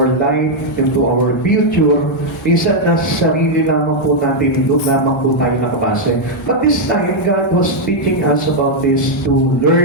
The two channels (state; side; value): normal; both; correlation -0.02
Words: life into our future. Minsan nasa sarili lamang po natin, doon lamang po tayo nakabase. But this time, God was teaching us about this to